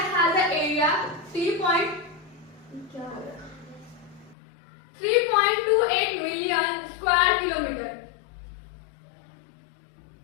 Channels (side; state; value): right; drops out; at 4.4 s